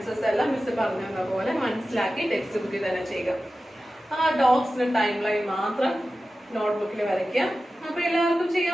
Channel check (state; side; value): normal; both; correlation 0.94